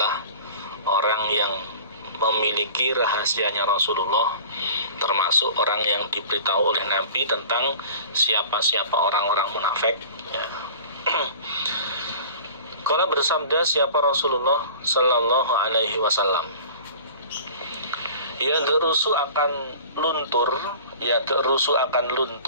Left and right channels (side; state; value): both; inverted; correlation -0.42